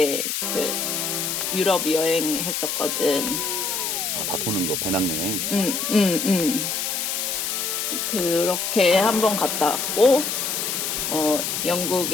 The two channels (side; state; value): left; noise; hiss, 1 dB below the sound